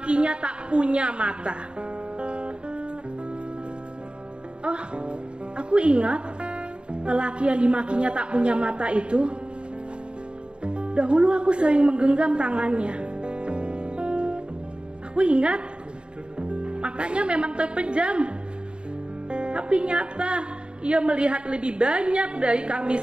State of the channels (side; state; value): left; late; 0.053 ms